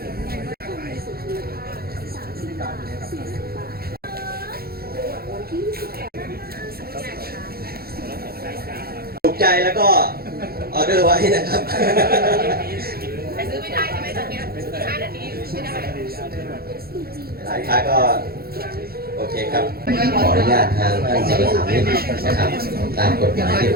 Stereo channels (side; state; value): left; late; 0.44 ms